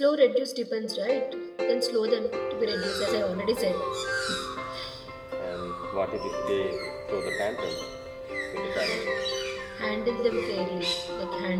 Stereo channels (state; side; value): identical; both; correlation 1.00